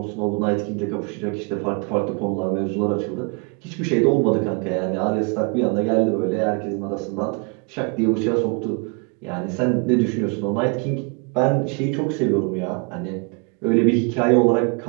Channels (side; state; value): left; quieter; 33.2 dB